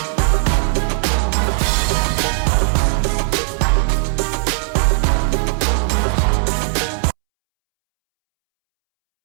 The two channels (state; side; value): silent; left; 68 dB below the other